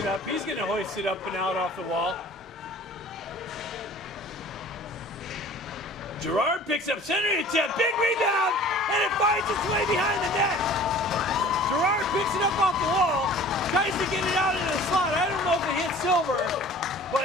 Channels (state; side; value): normal; both; correlation 0.46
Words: up. He's going to hoist it up and out off the wall. Gerard picks up center attempt. Big rebound. And it finds its way behind the net. Gerard picks it up off the wall. Tries to get it out into the slot. I don't know if it hit Silver,